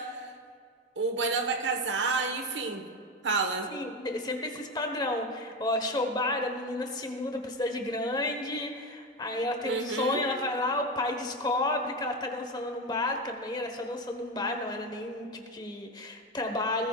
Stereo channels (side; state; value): both; normal; correlation 0.17